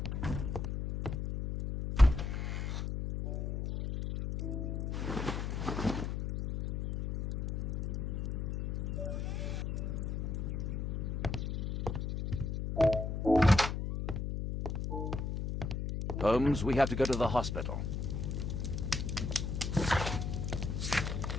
Holmes, we have to go to the hospital.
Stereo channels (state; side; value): noise; left; hum, 2 dB below the sound